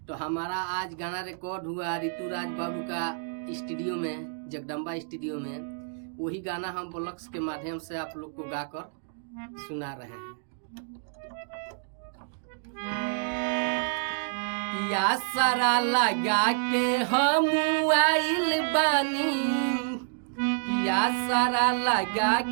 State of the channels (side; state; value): left; silent; digital silence